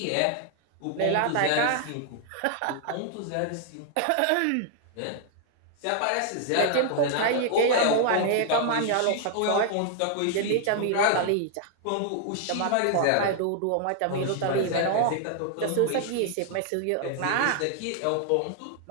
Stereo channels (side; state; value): both; different; correlation 0.00